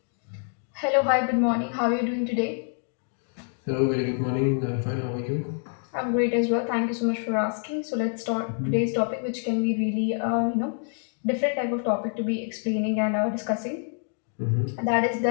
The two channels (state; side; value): silent; right; 56 dB below the other